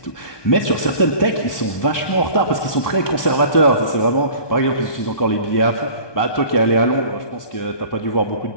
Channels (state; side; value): late; right; 1.2 ms